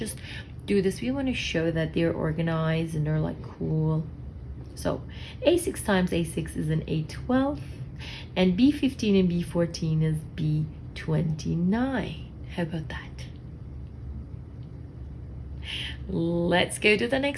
do this. We want to show that they're organized and they're like cool. So A6 times A6 is an A12, and B15 and B14 is B29. How about that? Let's go to the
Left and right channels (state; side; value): identical; both; correlation 1.00